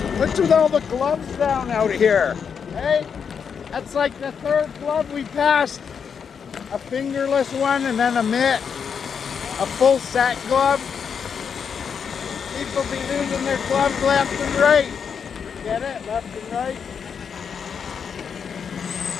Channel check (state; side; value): quieter; right; 6.7 dB